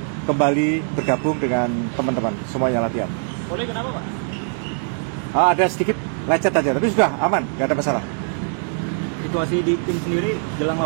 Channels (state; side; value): silent; left; 56 dB below the other